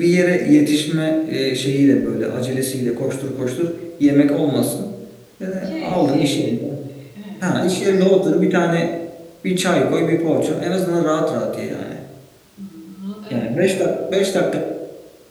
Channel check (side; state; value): both; identical; correlation 1.00